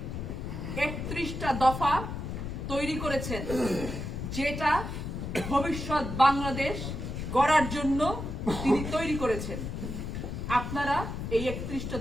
31টা দফা তৈরি করেছেন, যেটা ভবিষ্যৎ বাংলাদেশ গড়ার জন্য তিনি তৈরি করেছেন। আপনারা এই 31টা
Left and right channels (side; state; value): left; noise; rumble, 5 dB below the sound